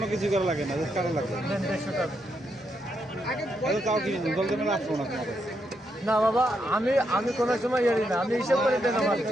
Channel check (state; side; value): normal; both; correlation 0.80